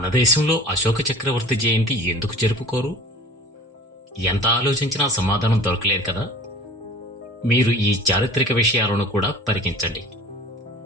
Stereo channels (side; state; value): both; normal; correlation 0.41